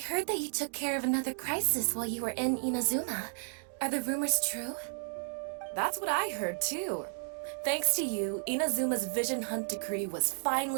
that you took care of another crisis while you were in Inazuma. Are the rumors true? That's what I heard too. Thanks to you, Inazuma's Vision Hunt decree was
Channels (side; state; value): left; silent; digital silence